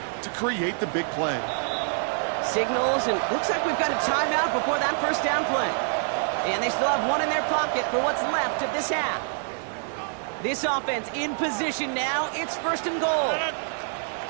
to create the big play. Signals, and looks like we've got a timeout before that 1st down play. And they still have 1 in their pocket for what's left of this half. This offense in position now. It's 1st and goal.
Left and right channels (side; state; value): left; silent; 61 dB below the other